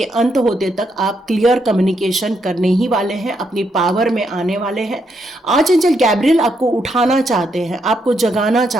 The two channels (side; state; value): both; normal; correlation 0.78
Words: अंत होते तक आप क्लियर कम्युनिकेशन करने ही वाले हैं, अपनी पावर में आने वाले हैं। आर्चएंजल गैब्रियल आपको उठाना चाहते हैं, आपको जगाना